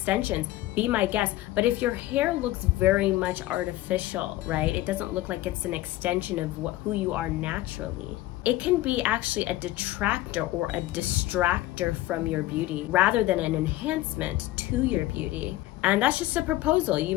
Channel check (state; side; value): quieter; right; 16.2 dB